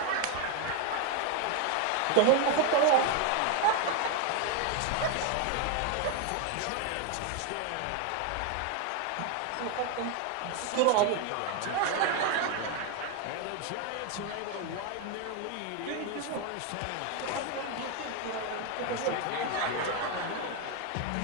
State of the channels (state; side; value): different; both; correlation 0.01